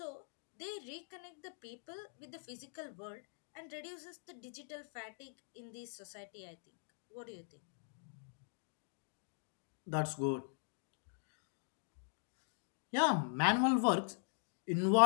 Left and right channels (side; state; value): right; silent; digital silence